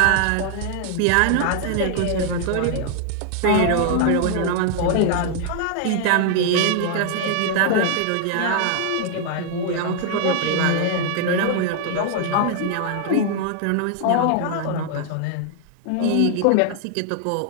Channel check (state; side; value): different; both; correlation 0.00